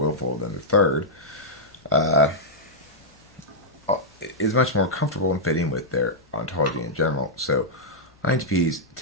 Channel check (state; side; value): normal; both; correlation -0.08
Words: than the third, is much more comfortable in fitting with their ontology in general. So INTPs